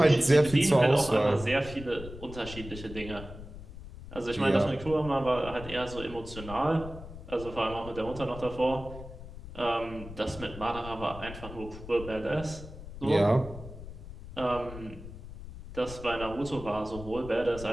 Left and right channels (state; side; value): noise; left; rumble, 13 dB below the sound